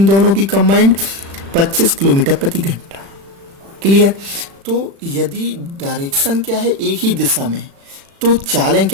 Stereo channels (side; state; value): left; late; 36 ms